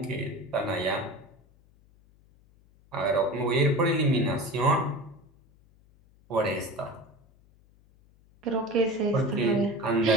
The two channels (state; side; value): noise; left; hum, 30 dB below the sound